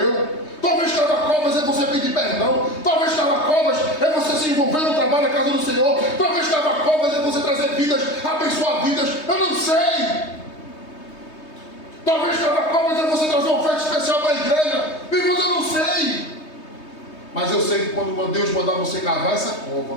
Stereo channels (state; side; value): late; right; 3.2 ms